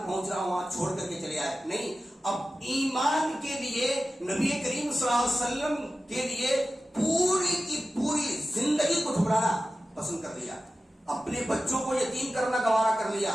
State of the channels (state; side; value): normal; both; correlation 0.94